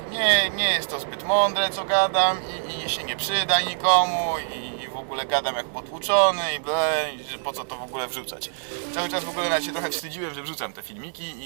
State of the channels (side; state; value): left; silent; digital silence